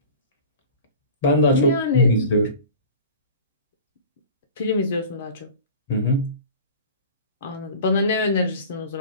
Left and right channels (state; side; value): inverted; both; correlation -0.39